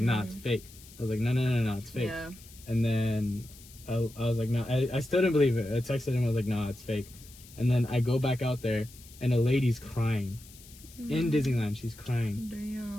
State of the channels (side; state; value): left; noise; hiss, 21 dB below the sound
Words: it's fake." I was like, "No, it's fake." Yeah. And then I was like, "No," I still didn't believe it. I texted him. I was like, "Nah, it's fake." And then I go back out there, and a lady's crying in Disneyland. She's crying.